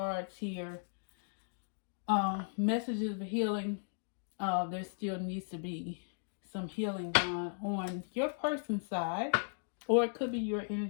here, messages of healing, there still needs to be some healing done on your person's side, or it could be your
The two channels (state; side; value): silent; right; digital silence